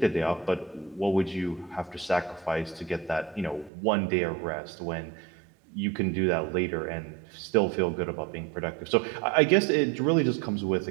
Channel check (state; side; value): drops out; left; at 3.7 s